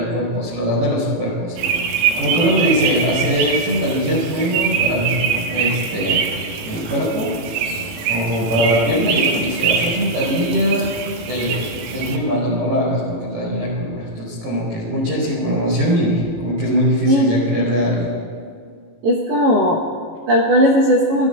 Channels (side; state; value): left; late; 18 ms